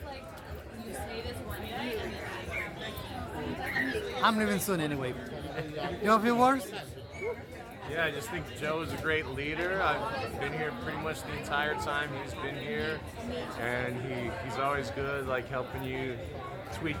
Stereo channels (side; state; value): both; identical; correlation 1.00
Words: I'm leaving soon anyway. You have a few words? Yeah, I just think Joe is a great leader. I've been here pretty much the entire time he's been here, and he's always good, like helping you tweak